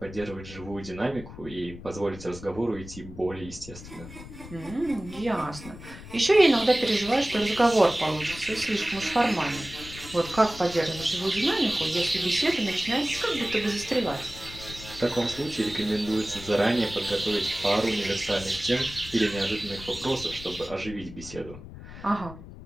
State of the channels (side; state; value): left; noise; rumble, 14 dB below the sound